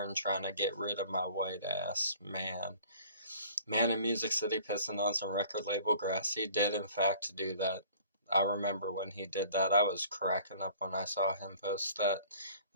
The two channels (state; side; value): inverted; both; correlation -0.50